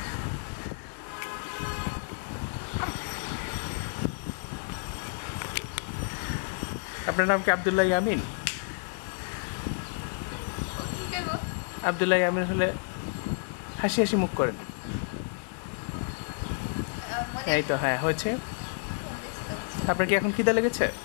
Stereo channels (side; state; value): right; silent; digital silence